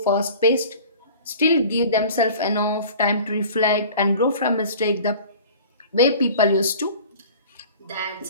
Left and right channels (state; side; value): inverted; both; correlation -0.43